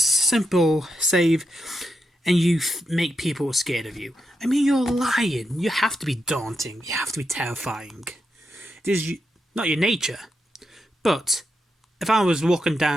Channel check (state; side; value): normal; both; correlation 0.85